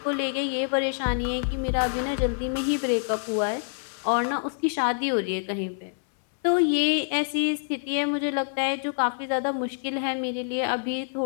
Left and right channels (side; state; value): right; silent; 61 dB below the other